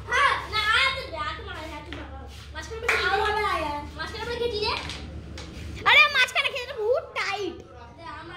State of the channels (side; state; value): both; identical; correlation 1.00